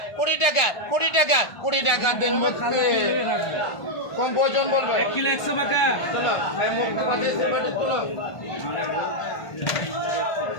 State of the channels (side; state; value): right; late; 1.5 ms